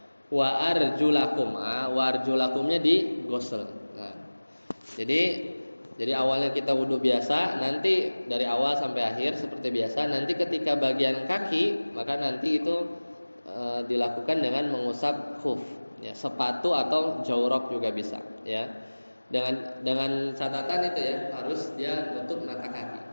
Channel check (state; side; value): inverted; both; correlation -1.00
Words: wa arjulakum wa arjulakumnya digosel. Nah, jadi awalnya kita wudhu biasa, nanti dari awal sampai akhir seperti biasa. Nanti ketika bagian kaki, maka nanti itu dilakukan dengan mengusap khuf, ya, sepatu atau jawrab juga bisa, ya. Dengan catatan itu ya, harus dia nutup mata kaki.